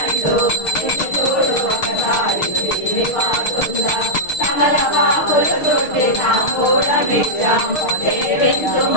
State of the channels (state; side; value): late; right; 6.5 ms